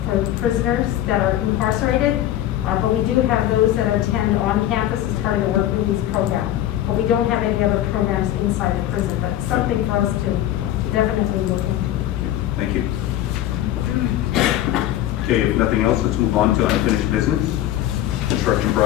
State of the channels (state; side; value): quieter; right; 12.9 dB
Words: for prisoners that are incarcerated. But we do have those that attend on campus as part of the work release program. But we don't have any other programs inside the prison, but something for us to definitely look into. Thank you. Okay, if nothing else, let's move on to unfinished business. Construction